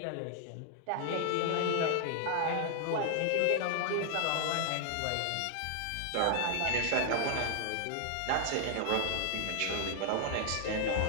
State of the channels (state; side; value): different; both; correlation 0.00